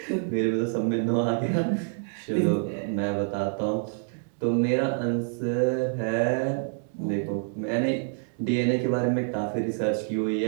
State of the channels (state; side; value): silent; left; 60 dB below the other